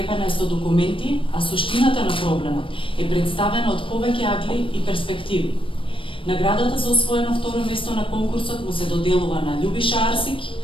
е со документи, а суштината на проблемот е представена од повеќе агли и перспективи. Наградата за освоено второ место на конкурсот му се доделува на Љубиша Арсик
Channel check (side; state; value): right; late; 0.25 ms